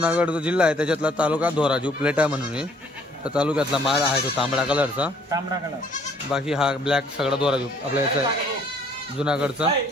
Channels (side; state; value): both; normal; correlation 0.61